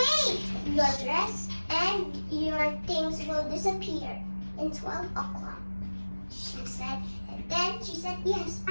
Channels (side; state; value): both; inverted; correlation -1.00